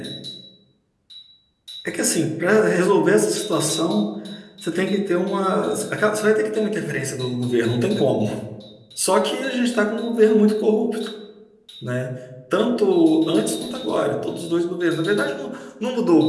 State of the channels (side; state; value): both; identical; correlation 1.00